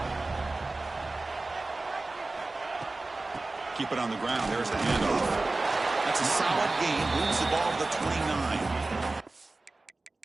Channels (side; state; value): left; quieter; 3.2 dB